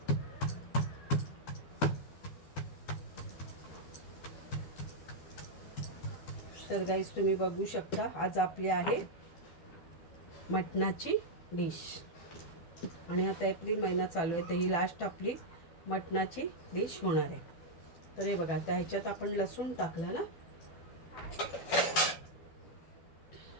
तर गाईस, तुम्ही बघू शकता आज आपली आहे मटणाची डिश. आणि आता एप्रिल महिना चालू आहे, तर ही लास्ट आपली मटणाची डिश होणार आहे. तर हे बघा, आता ह्याच्यात आपण लसूण टाकला ना,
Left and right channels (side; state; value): right; late; 12 ms